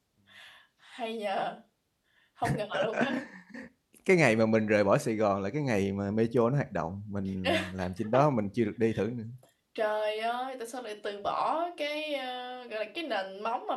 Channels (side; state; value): both; identical; correlation 1.00